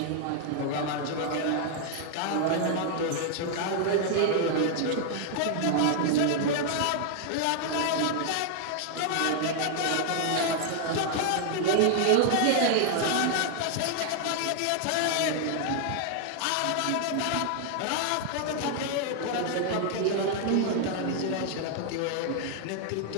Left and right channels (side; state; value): both; different; correlation 0.00